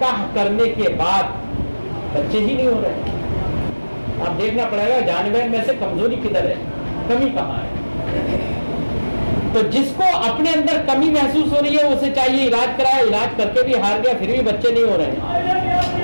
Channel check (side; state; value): both; inverted; correlation -1.00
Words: کرنے کے بعد بچے ہی نہیں ہو رہے، اب دیکھنا پڑے گا جانور میں سے کمزوری کدھر ہے، کمی کہاں ہے. تو جس کو اپنے اندر کمی محسوس ہو رہی ہے اسے چاہیے علاج کرائے، علاج کر کے بھی ہار گیا پھر بھی بچے نہیں ہو رہے،